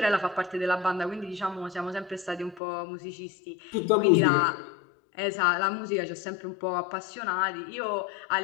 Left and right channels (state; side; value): drops out; right; at 2.6 s